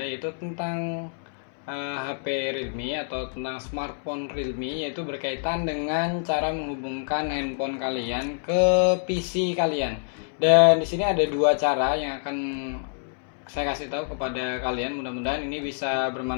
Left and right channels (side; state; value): right; silent; 61 dB below the other